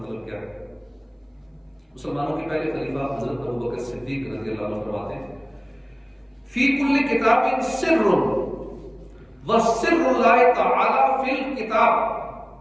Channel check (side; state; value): both; identical; correlation 1.00